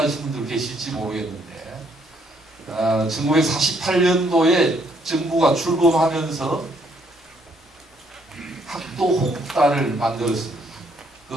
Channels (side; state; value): both; normal; correlation 0.69